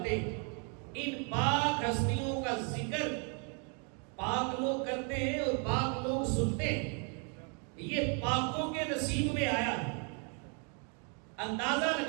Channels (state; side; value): quieter; left; 38.3 dB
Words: ہیں۔ ان پاک ہستیوں کا ذکر پاک لوگ کرتے ہیں اور پاک لوگ سنتے ہیں، یہ پاکوں کے نصیب میں آیا ہے۔ اندازہ